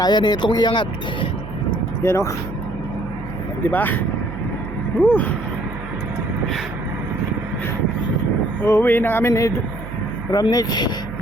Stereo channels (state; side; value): noise; right; hum, 11 dB below the sound